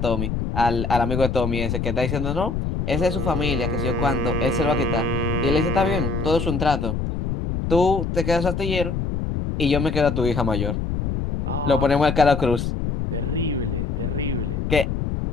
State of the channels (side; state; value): left; noise; rumble, 2 dB below the sound